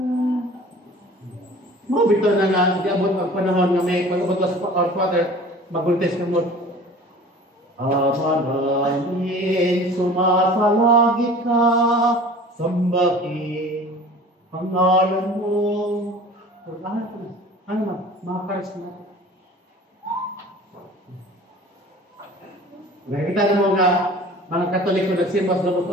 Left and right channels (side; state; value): both; normal; correlation 0.43